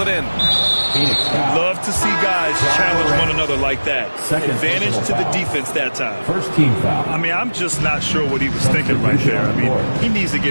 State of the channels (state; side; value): inverted; both; correlation -1.00